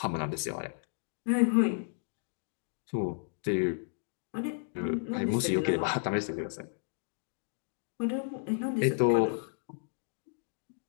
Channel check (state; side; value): silent; right; digital silence